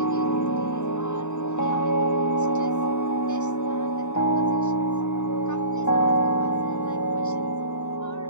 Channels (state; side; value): late; right; 0.84 ms